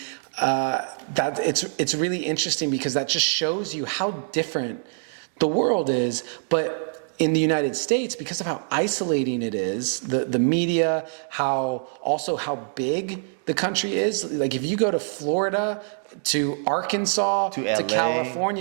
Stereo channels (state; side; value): silent; left; digital silence